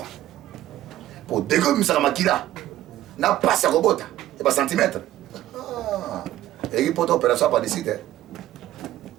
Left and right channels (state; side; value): quieter; left; 14.2 dB